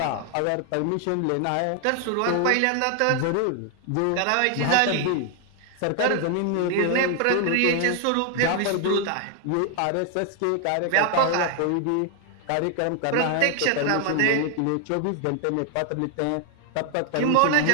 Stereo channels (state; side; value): different; both; correlation 0.00